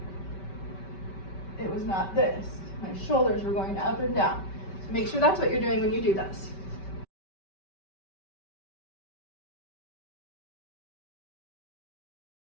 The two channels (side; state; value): right; late; 5.2 ms